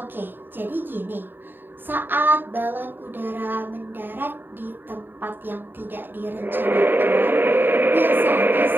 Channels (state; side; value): late; left; 0.094 ms